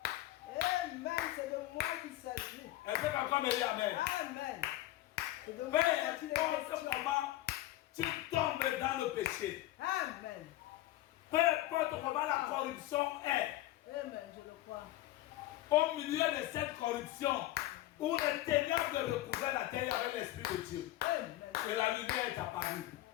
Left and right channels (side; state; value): right; quieter; 15.8 dB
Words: Amen. C'est de moi qu'il s'agit. Est-ce que quelqu'un me dit Amen? Amen. C'est de Peu moi qu'il est importe question. comment tu tombes dans le péché, Amen. peu importe comment la corruption est, Amen. Je le crois. au milieu de cette corruption, où le ténèbres recouvrait la terre avec l'Esprit de Dieu, Amen. et la lumière est apparue.